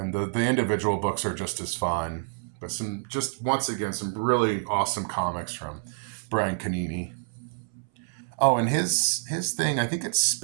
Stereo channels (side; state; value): left; silent; 60 dB below the other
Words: the individual books are just as fun. But once again, some really awesome comics from Brian Canini. Oh, and his thing, I think it's